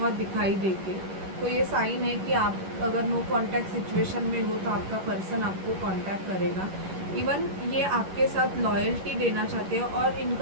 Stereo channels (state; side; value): late; left; 11 ms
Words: दिखाई देंगे, तो ये साइन है कि आप अगर नो कांटेक्ट सिचुएशन में हो तो आपका पर्सन आपको कांटेक्ट करेगा। इवन ये आपके साथ लॉयल्टी देना चाहते हैं और